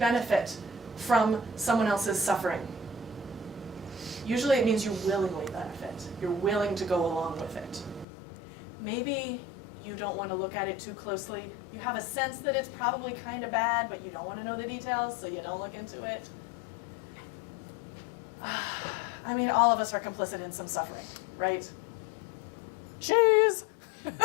from someone else's suffering. Usually it means you willingly benefit. You're willing to go along with it. Maybe you don't want to look at it too closely. You have a sense that it's probably kind of bad, but you don't want to know the details, so you don't look into it. I mean, all of us are complicit in some suffering, right? Cheese!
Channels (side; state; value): right; drops out; at 8.1 s